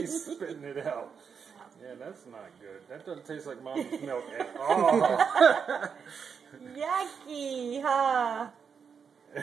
spitting it out. Yeah, that's not good. That doesn't taste like Mommy's milk at all. Yucky, huh?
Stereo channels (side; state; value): left; quieter; 6.5 dB